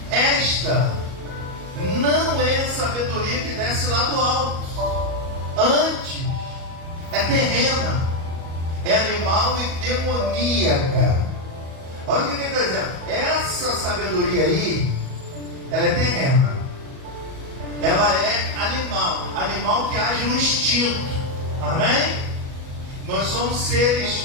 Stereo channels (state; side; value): late; left; 37 ms